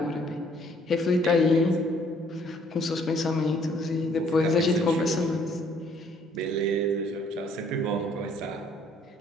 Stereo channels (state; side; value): normal; both; correlation 0.62